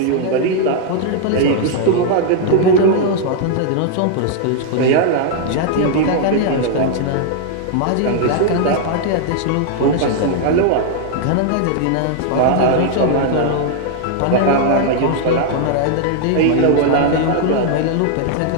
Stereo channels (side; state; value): both; different; correlation 0.00